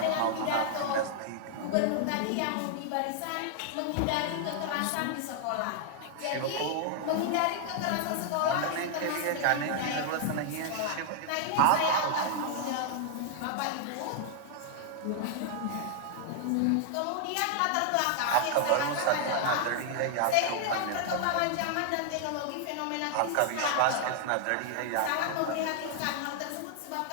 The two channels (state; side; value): different; both; correlation 0.00